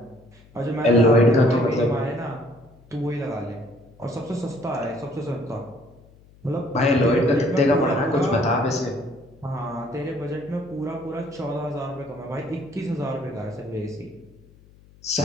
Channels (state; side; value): noise; left; hum, 26 dB below the sound